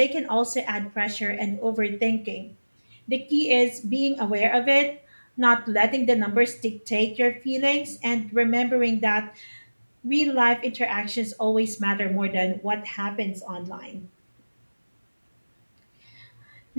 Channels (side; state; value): both; inverted; correlation -1.00